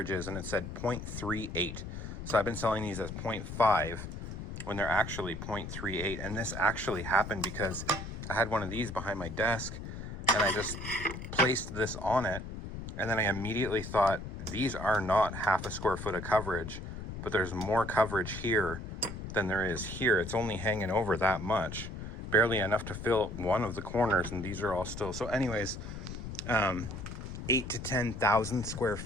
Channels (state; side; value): noise; left; rumble, 8 dB below the sound